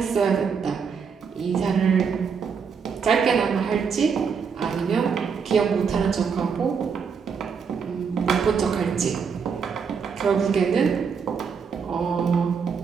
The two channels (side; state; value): left; quieter; 6.2 dB